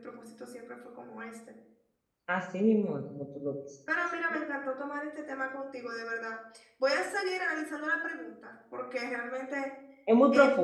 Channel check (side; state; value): both; identical; correlation 1.00